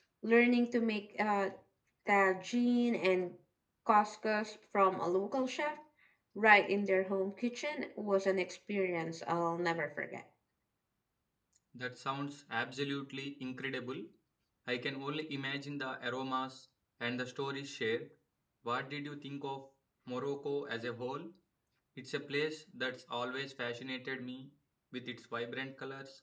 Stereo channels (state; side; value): identical; both; correlation 1.00